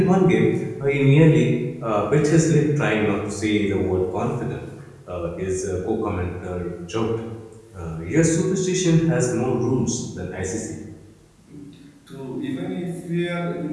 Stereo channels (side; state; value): both; identical; correlation 1.00